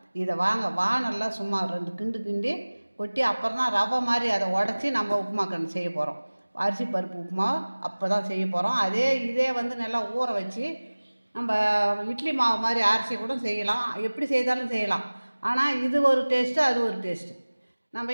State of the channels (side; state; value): both; inverted; correlation -1.00